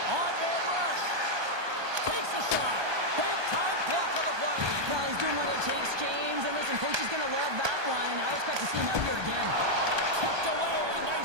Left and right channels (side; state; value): left; late; 1.2 ms